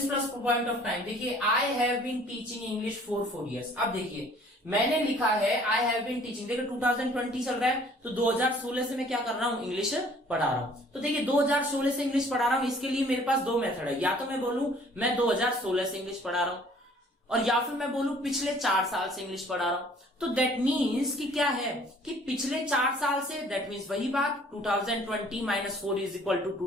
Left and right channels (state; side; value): normal; both; correlation 0.55